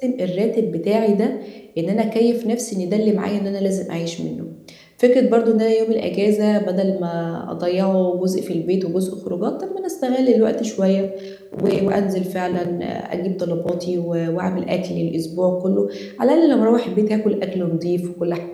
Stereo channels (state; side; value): identical; both; correlation 1.00